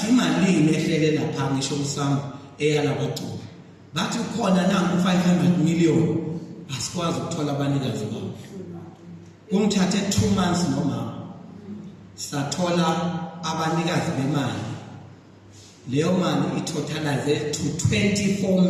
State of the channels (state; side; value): identical; both; correlation 1.00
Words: imali ehlele lapha ngisho usami eyala kwacula bathi khona nangu 500 million asikwazi ukuthola abanikazi babo kumthathe 2 months noma sathola abanikazi bemali leyo mali itotalize to 24